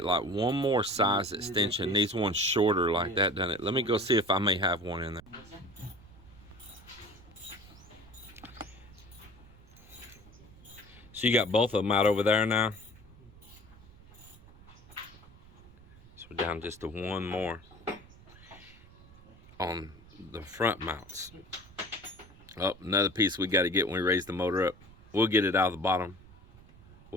like one more size extension. Needs one shorter like that, doesn't it? Let me go see if I may have one in there. So you got both of them out over there now. So we're down just to one more on the front mounts. Oh, another piece we got to get when we raise the motor up. We'll get it out of the bottom.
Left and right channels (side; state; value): right; noise; rumble, 22 dB below the sound